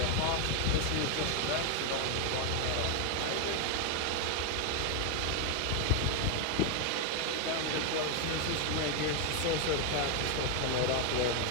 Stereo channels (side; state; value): both; different; correlation 0.01